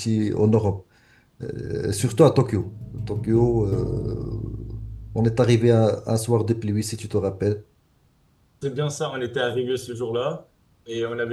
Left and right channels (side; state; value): both; identical; correlation 1.00